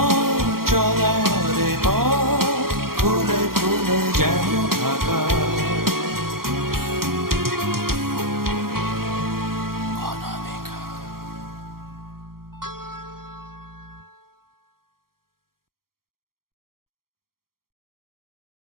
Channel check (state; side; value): late; left; 0.93 ms